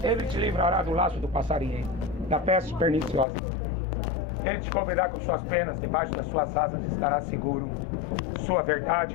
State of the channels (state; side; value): drops out; right; at 3.2 s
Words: Ele te livrará do laço do passarinheiro, da peste perniciosa. Ele te cobrirá com suas penas, debaixo das suas asas estará seguro. Sua